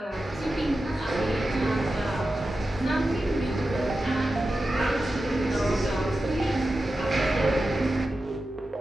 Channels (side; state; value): both; normal; correlation 0.92